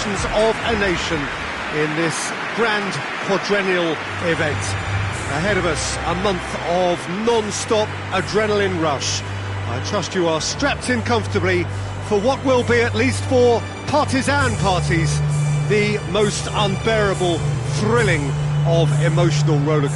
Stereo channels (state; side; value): identical; both; correlation 1.00